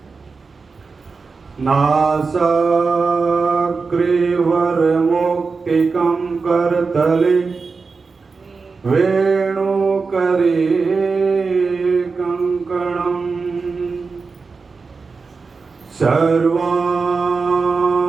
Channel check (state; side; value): quieter; left; 4.6 dB